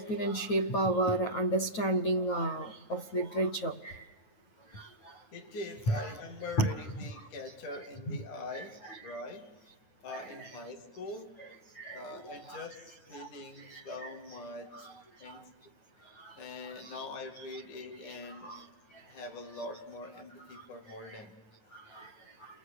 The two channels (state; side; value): late; right; 9.3 ms